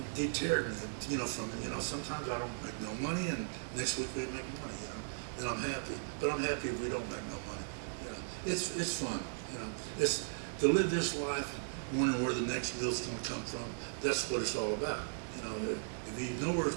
deterred me, sometimes I don't make no money, and next week we make money, and I'm happy. But I'm happy if we don't make no money. It's fun, It's to live this life, wondering where the next meal's going to come from. That's what it's all about. If you know where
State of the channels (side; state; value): left; silent; digital silence